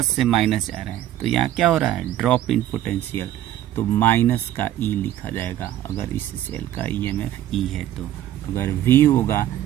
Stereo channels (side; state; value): left; quieter; 12.6 dB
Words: से माइनस जा रहे हैं, तो यहाँ क्या हो रहा है, ड्रॉप इन पोटेंशियल, तो माइनस का E लिखा जाएगा। अगर इस सेल का EMF E है तो अगर V होगा